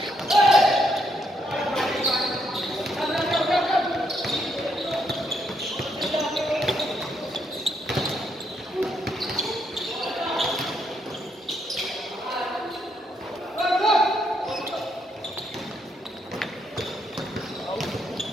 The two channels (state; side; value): normal; both; correlation 0.76